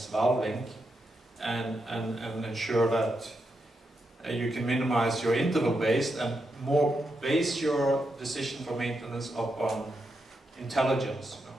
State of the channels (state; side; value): normal; both; correlation 0.84